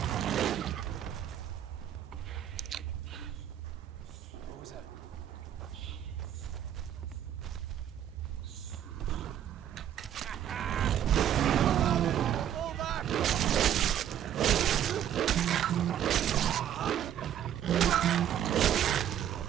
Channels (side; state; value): left; quieter; 10.4 dB